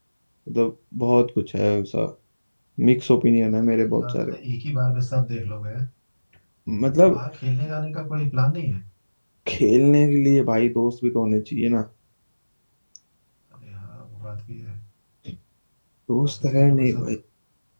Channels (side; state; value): both; inverted; correlation -1.00